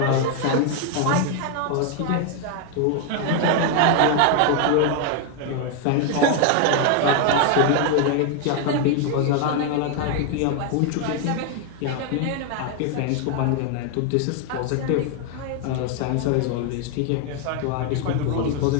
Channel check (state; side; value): different; both; correlation 0.01